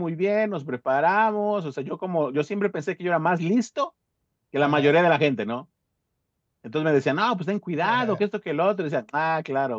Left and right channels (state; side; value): identical; both; correlation 1.00